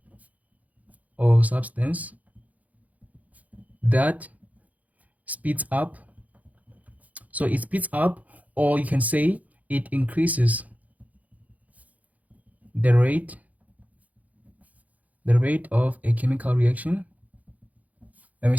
that speeds up. So it speeds up, or you can say it increases the rate of a chemical reaction. Let me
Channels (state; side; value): late; left; 0.075 ms